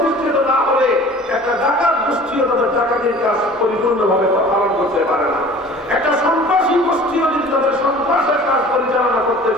না হলে একটা ডাকাত গোষ্ঠীও তাদের ডাকাতির কাজ পরিপূর্ণভাবে পালন করতে পারে না। একটা সন্ত্রাসী গোষ্ঠীও যদি তাদের সন্ত্রাসের কাজ পরিচালনা করতে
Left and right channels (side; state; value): both; normal; correlation 0.45